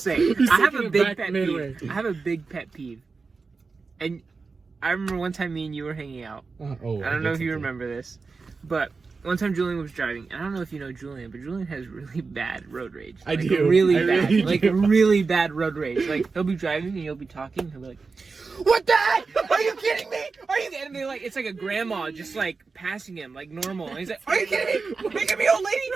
have a big pet peeve. I have a big pet peeve. And I remember one time me and you were hanging out. I don't know if you remember this, but one time Julian was driving, and I don't know if you know Julian, but Julian has really bad road rage. I do. Really I bad. really Like, do. really bad road rage. Like, he'll be driving, and he'll be talking, and he'll be like, what the heck? Are you kidding me? Are you kidding me? Like, it's like a grandma just, like, passing him, like, normal. And he's like, are you kidding me? Are you kidding me, old lady?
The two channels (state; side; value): quieter; left; 4.4 dB